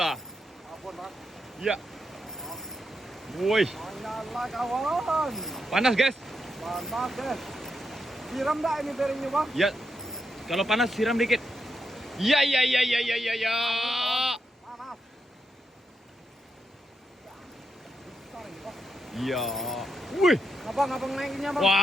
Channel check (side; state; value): both; normal; correlation 0.83